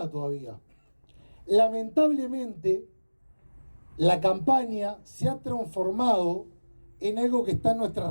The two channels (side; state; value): both; inverted; correlation -1.00